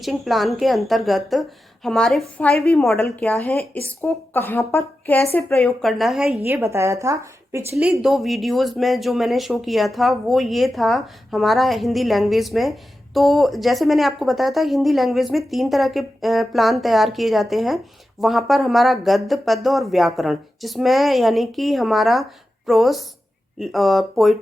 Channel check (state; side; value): normal; both; correlation 0.91